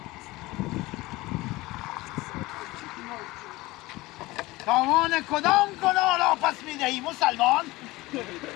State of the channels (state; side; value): quieter; right; 20.2 dB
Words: تاوان کدام گناه را پس می‌دهی مسلمان؟